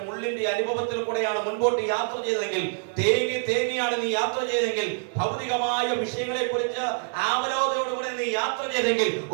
മുള്ളിന്റെ അനുഭവത്തിൽ കൂടെയാണ് മുൻപോട്ട് യാത്ര ചെയ്തതെങ്കിൽ, തേങ്ങിയാണ് നീ യാത്ര ചെയ്തെങ്കിൽ, ഭൗതികമായ വിഷയങ്ങളെ കുറിച്ച് ആവലോകതയോടുകൂടെ നീ യാത്ര ചെയ്തെങ്കിൽ,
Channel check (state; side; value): silent; left; 61 dB below the other